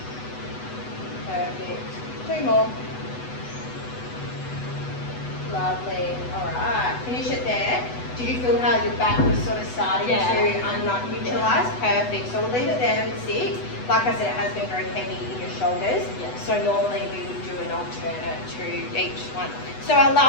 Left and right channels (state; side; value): late; right; 8.1 ms